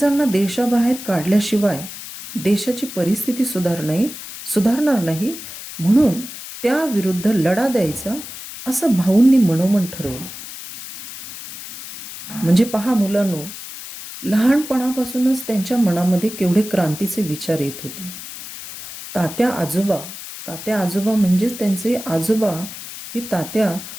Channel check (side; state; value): left; noise; hiss, 12 dB below the sound